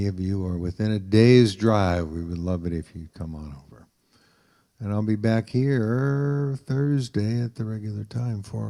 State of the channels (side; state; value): both; identical; correlation 1.00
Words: of you are within a day's drive, we would love it if you'd come on over. And I'll be back here Thursday at the regular time, 4